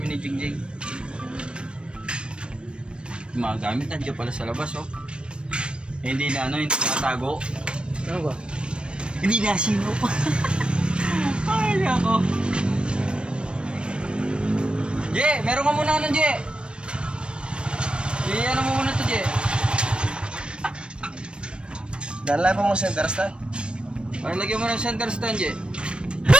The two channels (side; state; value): left; late; 0.056 ms